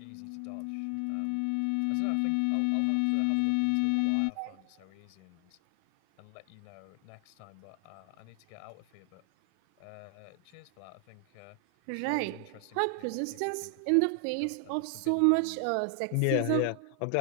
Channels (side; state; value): both; different; correlation 0.00